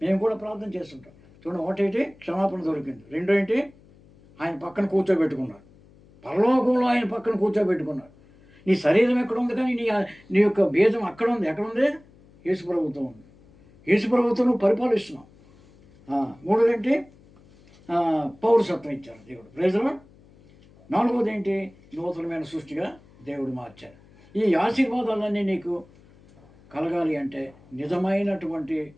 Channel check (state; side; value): noise; left; hum, 27 dB below the sound